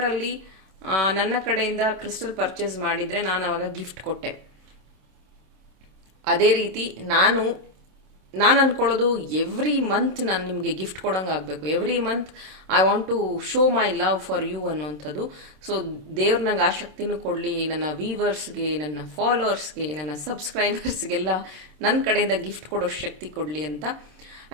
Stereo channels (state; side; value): late; left; 26 ms